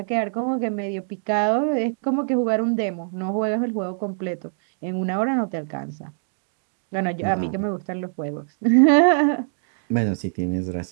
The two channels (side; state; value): left; silent; digital silence